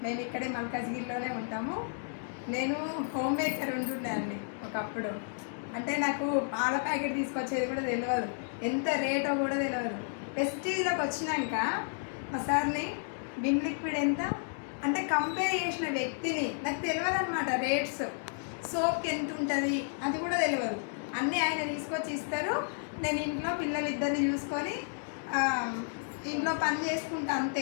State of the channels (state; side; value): silent; right; digital silence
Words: మేము ఇక్కడే మల్కాజ్గిరిలోనే ఉంటాము. నేను హోమ్ మేకర్ ఉంటుండే అండి ఒకప్పుడు. అంటే నాకు పాల ప్యాకెట్ తీసుకొచ్చేది కూడా తెలియదు, ఎంత రేటో కూడా తెలియదు. వెస్టీజ్లోకి వచ్చినాక మా సార్ని విమ్ లిక్విడ్ ఎంత అంటే కంపేర్ చేసిన వ్యక్తిని నాకు తెలియదు అనమాట. రేట్స్, సోప్కి ఎంత ఉంటుంది అది కూడా తెలియదు. అన్నీ ఆయన తీసుకొచ్చి ఇస్తారు. నేను ఇంట్లో పిల్లలిద్దరిని చూసుకొని ఇంట్లో పని చేసుకుంటా